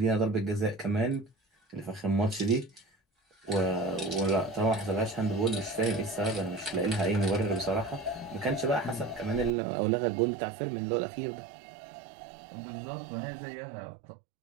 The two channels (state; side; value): drops out; left; at 9.5 s